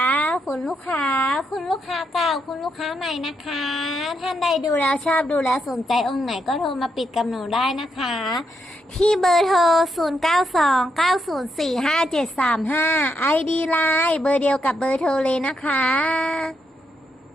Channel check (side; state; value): both; normal; correlation 0.80